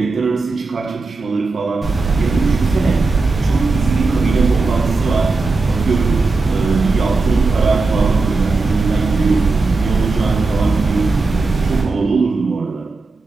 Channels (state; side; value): quieter; left; 3.7 dB